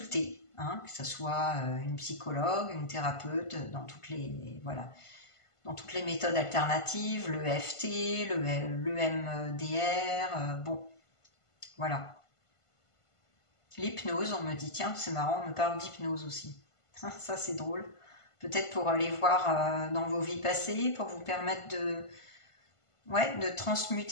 hein, que ce soit une psychologue, une thérapeute, dans toutes les méthodes alternatives, le EFT, le MDR, bon, voilà. L'hypnose, on me dit, tiens, c'est marrant, on me parle d'hypnose aussi. Ça, c'est drôle. Peut-être pour aller voir dans vos vies passées, pour vous permettre de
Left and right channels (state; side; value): late; right; 1.5 ms